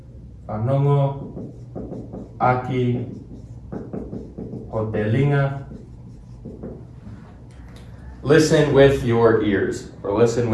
aki hotelinga. Listen with your ears, or listen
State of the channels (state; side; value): identical; both; correlation 1.00